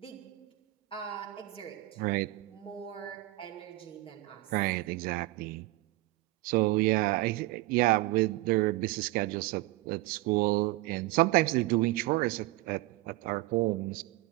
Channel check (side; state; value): left; quieter; 19.6 dB